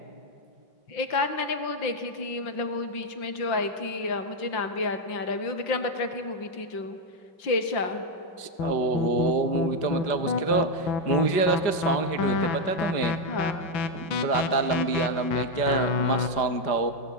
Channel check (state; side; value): late; right; 5.0 ms